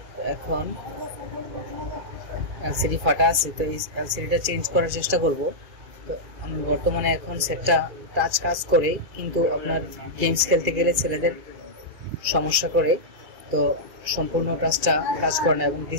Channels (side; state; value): left; late; 2.4 ms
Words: এখন এলসিডি ফাটা আছে, তো এই এলসিডিটা চেঞ্জ করার চেষ্টা করব। তো আমি বর্তমানে এখন সেটটা টাচ কাজ করে, কিন্তু আপনার গেমস খেলতে গেলে ছেলেদের সমস্যা করে, তো সম্পূর্ণ টাচটা কাজ করে না এবং